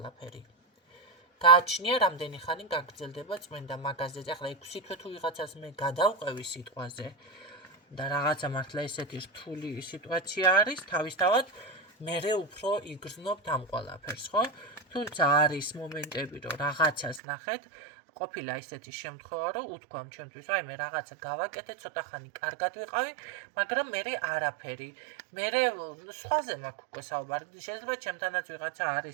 გააჩნია რამდენი ხანი გაგრძელდება წმენდა მაგაზე. ახლა 6 თვე თუ ვიღაცას მე გადავყევი სიტყვაზე და რაღაცა მართლა ესეთი რთული სიტუაცია არის, თავისთავად მერე უფრო იგრძნობთ ამ ყველაფერს, ხო? თუმცა არის მომენტები, რომ რაღაცას ნახეთ, ყოფილა ისეთი შემთხვევა, რომ უთქვამ ჩემთვის, აი მე რაღაცა გავაკეთე, ცოტა ხანი კარგად ვიყავი, მაგრამ მერე არაფერი. მერე სხვაზე მაქვს უკვე საუბარი. შეიძლება ჩემთანაც ვიღაცა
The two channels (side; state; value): left; drops out; at 17.2 s